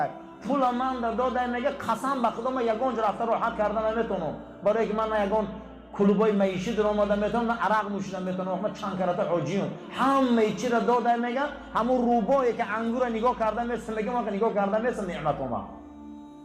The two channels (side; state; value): both; identical; correlation 1.00